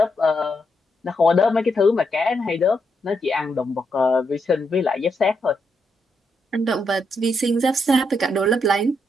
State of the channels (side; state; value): both; normal; correlation 0.80